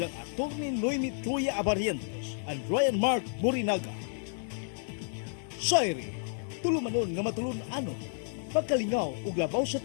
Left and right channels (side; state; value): right; silent; digital silence